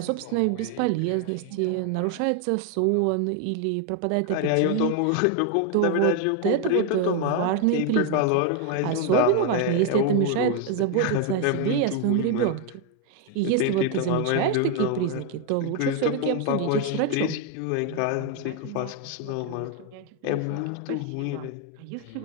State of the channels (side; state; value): both; different; correlation 0.01